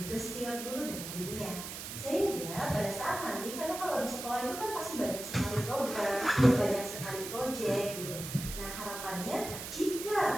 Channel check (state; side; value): noise; right; hiss, 8 dB below the sound